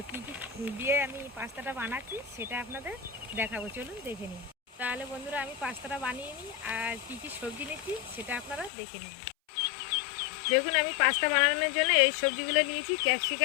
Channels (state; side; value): drops out; right; at 8.7 s